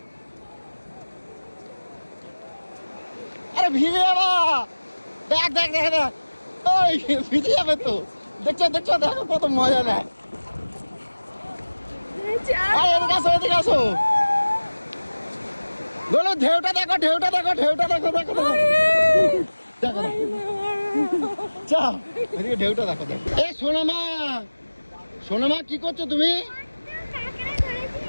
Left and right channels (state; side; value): inverted; both; correlation -1.00